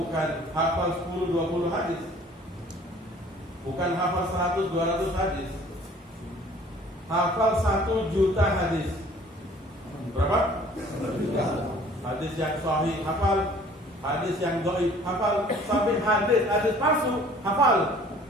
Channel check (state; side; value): normal; both; correlation 0.52